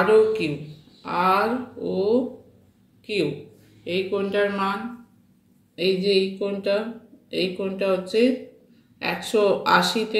ও কিউ এই কোণটার মান, এই যে এই কোণটা হচ্ছে 180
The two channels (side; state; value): both; identical; correlation 1.00